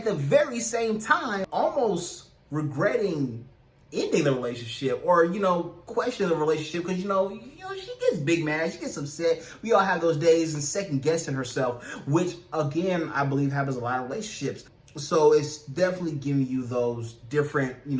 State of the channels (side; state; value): both; identical; correlation 1.00